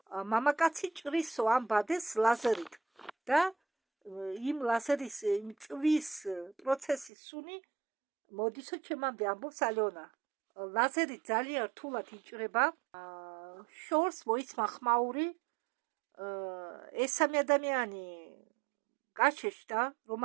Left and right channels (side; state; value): left; drops out; at 7.1 s